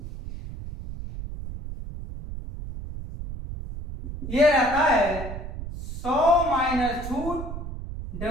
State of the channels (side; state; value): right; noise; rumble, 9 dB below the sound